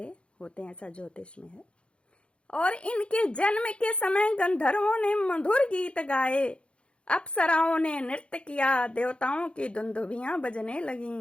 होते हैं, ऐसा ज्योतिष में है। और इनके जन्म के समय गंधर्वों ने मधुर गीत गाए, अप्सराओं ने नृत्य किया, देवताओं की दुंदुभियां बजने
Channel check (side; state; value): right; late; 0.058 ms